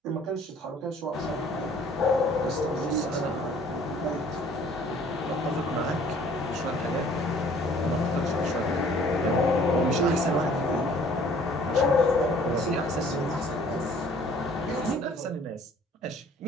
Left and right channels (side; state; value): both; normal; correlation 0.55